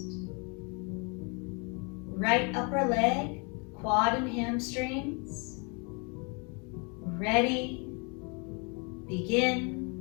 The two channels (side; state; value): right; quieter; 34.1 dB